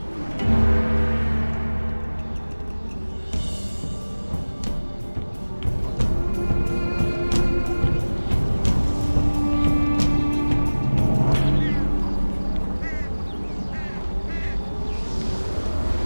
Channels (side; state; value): both; inverted; correlation -1.00